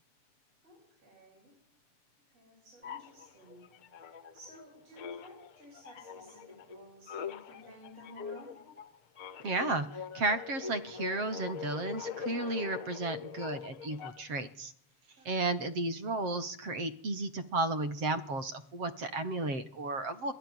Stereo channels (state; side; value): late; left; 7.5 ms